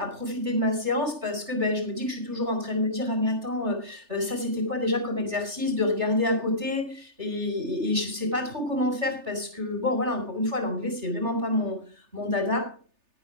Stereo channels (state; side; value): late; left; 3.3 ms